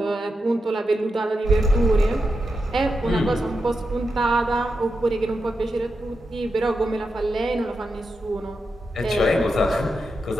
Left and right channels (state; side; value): normal; both; correlation 0.87